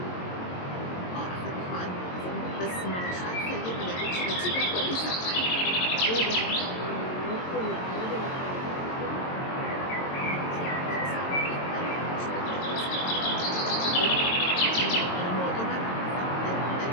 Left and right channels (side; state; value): right; late; 22 ms